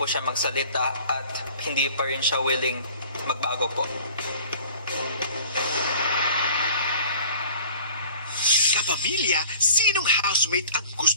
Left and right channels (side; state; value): both; inverted; correlation -0.47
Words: siya magsalita at hindi pa rin siya willing magbago po. Kapamilya, sinong housemate ang